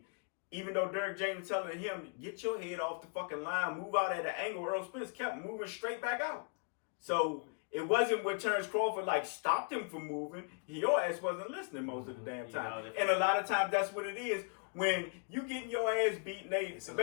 even though Derrick James was telling him, get your head off the fucking line, move out at an angle, Earl Spence kept moving straight back out. So it wasn't what Terrence Crawford like stopped him from moving. Your ass wasn't listening most of the damn time. And a lot of times that's what it is. When you getting your ass beat, it's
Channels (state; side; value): quieter; right; 39.4 dB